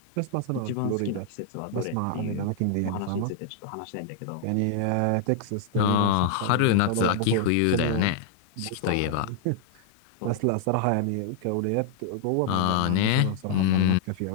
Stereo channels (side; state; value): both; different; correlation -0.01